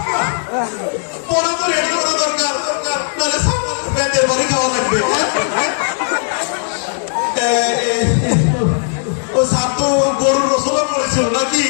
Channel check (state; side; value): silent; right; digital silence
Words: পড়া তো রেডি করা দরকার, নাহলে ব্যান্ডের বাড়ি খাওয়া লাগবে। ও সাপ তো গরুর রসলা পড়েছিল নাকি?